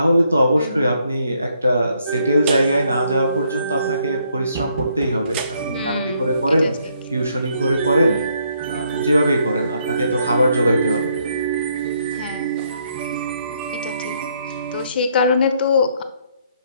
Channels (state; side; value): inverted; both; correlation -0.71